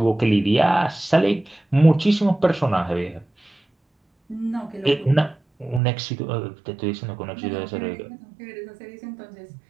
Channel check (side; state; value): left; drops out; at 5.8 s